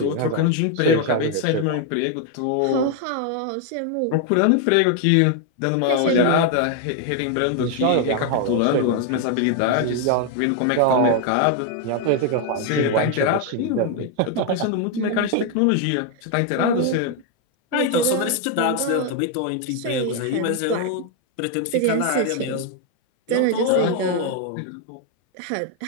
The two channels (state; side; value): different; both; correlation 0.01